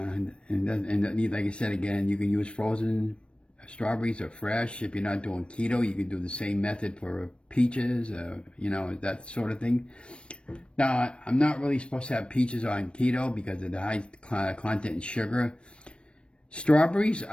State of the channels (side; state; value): right; late; 0.058 ms